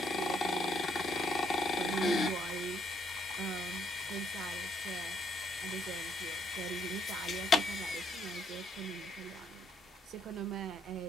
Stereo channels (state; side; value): normal; both; correlation 0.70